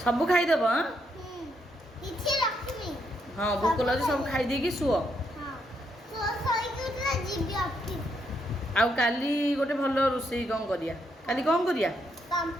ସବୁ ଖାଇଦେବ ଆଁ? କିଛି ରଖିନି। ହଁ ଭୋକ ଲାଗୁଛି, ସବୁ ଖାଇଦେଇକି ଶୁଅ। ହଁ ଶୋଇକି ଉଠିଲେ ଯିବି ଅଫିସ। ଆଉ କାଲି ଗୋଟେ ଭଲ ରୋଷେଇ କ'ଣ କରିବା? କାଲି କ'ଣ କରିବା?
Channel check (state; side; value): normal; both; correlation 0.77